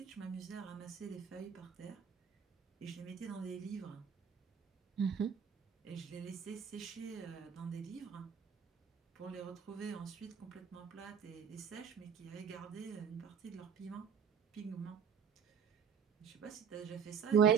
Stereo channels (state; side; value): quieter; left; 7.3 dB